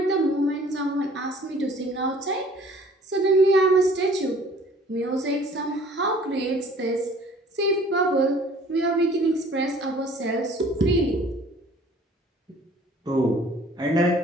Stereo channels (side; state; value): both; normal; correlation 0.53